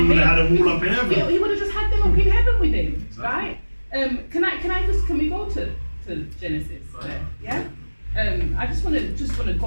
domain. have had them all up in heaven? He would have just had them up in heaven with him, Exactly. right? Can we go to Genesis? Right. Yeah. I just want to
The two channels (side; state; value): both; inverted; correlation -1.00